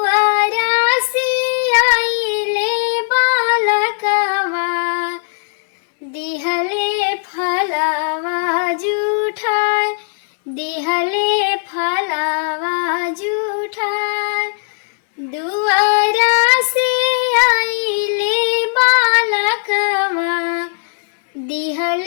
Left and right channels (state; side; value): silent; right; digital silence